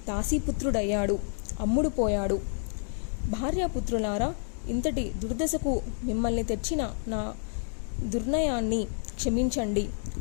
దాసీపుత్రుడయ్యాడు. అమ్ముడు పోయాడు. భార్యాపుత్రులారా, ఇంతటి దుర్దశకు మిమ్మల్ని తెచ్చిన నా దుర్నయాన్ని క్షమించండి.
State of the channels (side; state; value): right; silent; digital silence